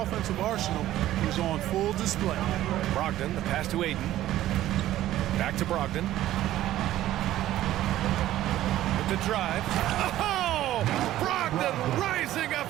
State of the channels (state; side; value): quieter; left; 13.9 dB